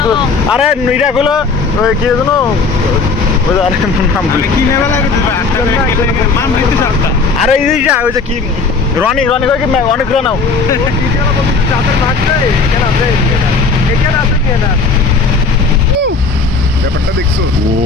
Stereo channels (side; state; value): right; quieter; 4.4 dB